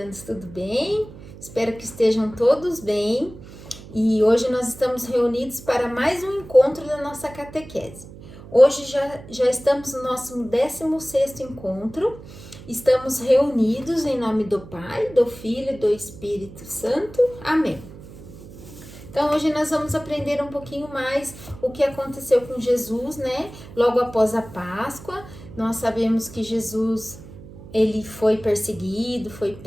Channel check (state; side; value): noise; right; hum, 17 dB below the sound